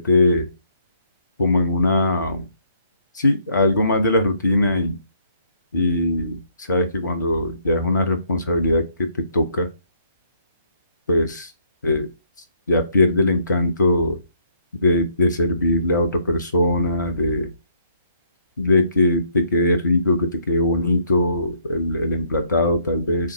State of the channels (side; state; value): both; inverted; correlation -0.68